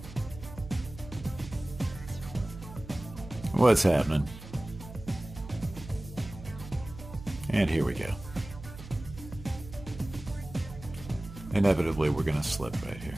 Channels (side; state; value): right; noise; hum, 14 dB below the sound